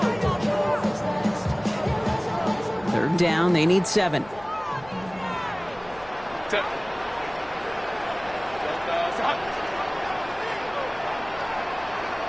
Third down, they need 7.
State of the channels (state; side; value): noise; left; hum, 22 dB below the sound